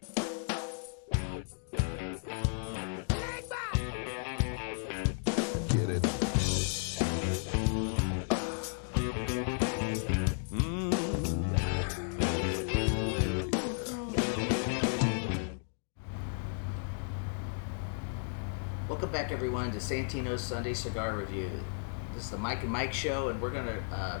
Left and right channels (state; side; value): silent; right; digital silence